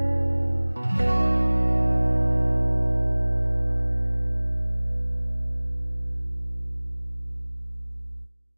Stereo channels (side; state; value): both; inverted; correlation -1.00